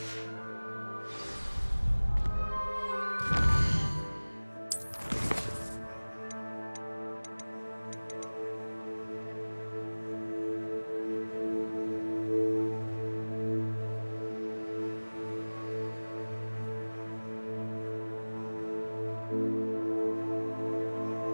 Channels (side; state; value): both; inverted; correlation -1.00